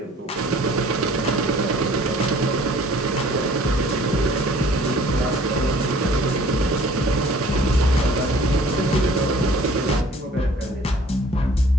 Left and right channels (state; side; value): normal; both; correlation 0.52